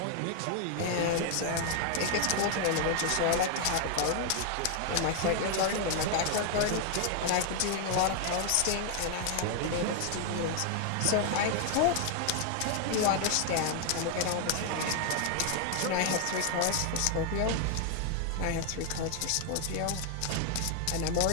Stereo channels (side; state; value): both; different; correlation 0.00